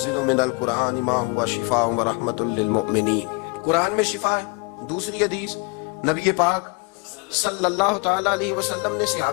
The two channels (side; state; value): right; quieter; 29.7 dB